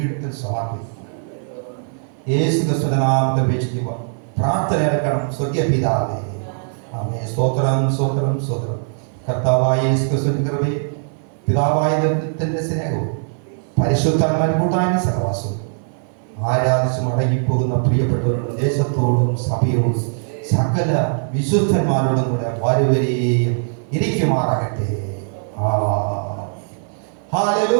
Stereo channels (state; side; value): silent; left; 57 dB below the other